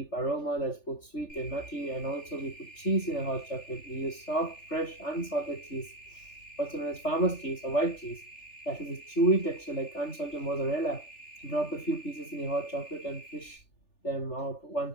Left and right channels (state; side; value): late; right; 3.4 ms